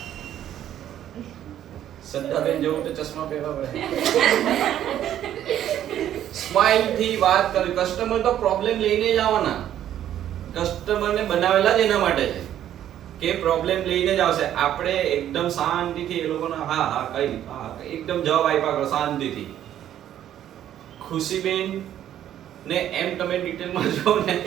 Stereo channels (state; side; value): quieter; left; 11.2 dB